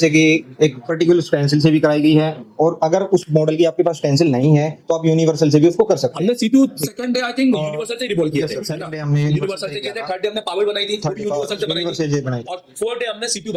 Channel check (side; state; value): both; identical; correlation 1.00